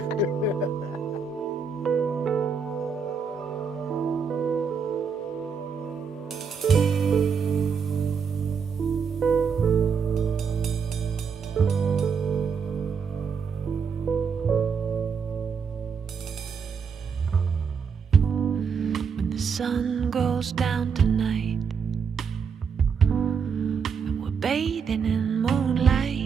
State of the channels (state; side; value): quieter; left; 6.1 dB